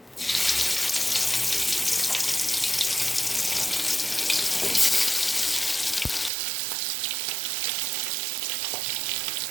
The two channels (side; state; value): left; drops out; at 6.3 s